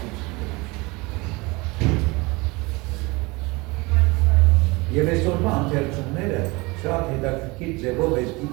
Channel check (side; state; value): left; quieter; 24.6 dB